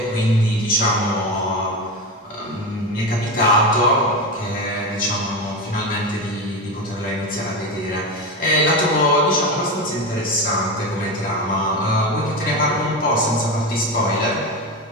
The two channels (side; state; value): both; normal; correlation 0.19